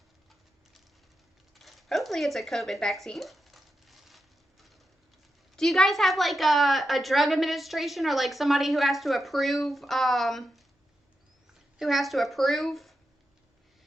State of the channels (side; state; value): both; normal; correlation 0.87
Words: Hopefully it's a COVID vaccine. Do you guys have like a drug administration or like somebody who has to approve,